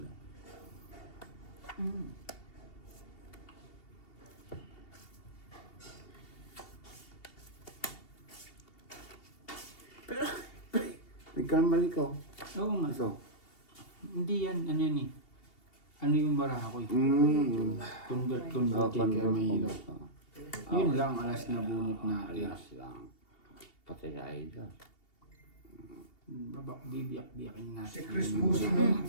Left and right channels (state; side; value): late; right; 2.8 ms